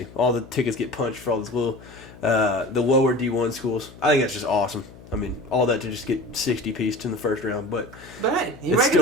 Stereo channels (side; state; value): left; noise; hum, 20 dB below the sound